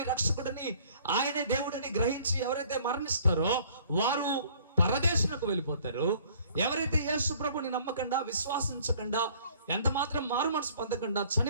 రక్షకుడిని, ఆయనే దేవుడిని గ్రహించి ఎవరైతే మరణిస్తారో వారు పరదేశులకు వెళ్ళిపోతారు. ఎవరైతే యేసు ప్రభువుని నమ్మకుండా, విశ్వాసించకుండా, ఎంత మాత్రం మారు మనసు పొందకుండా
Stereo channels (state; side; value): inverted; both; correlation -0.55